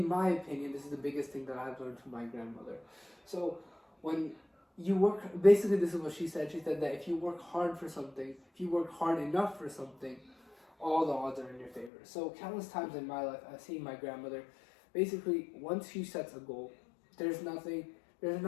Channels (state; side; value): drops out; right; at 11.9 s